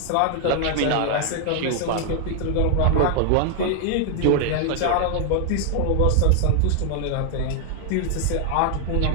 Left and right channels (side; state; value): both; different; correlation 0.00